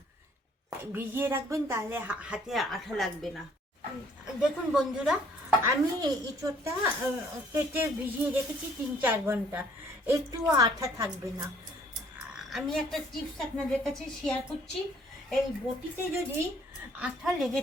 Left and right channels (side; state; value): both; normal; correlation 0.61